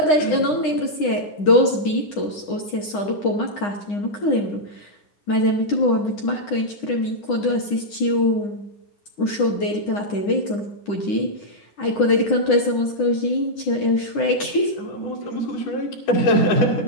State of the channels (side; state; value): right; late; 9.9 ms